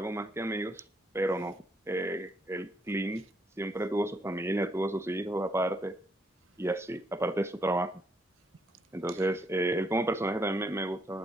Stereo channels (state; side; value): normal; both; correlation 0.73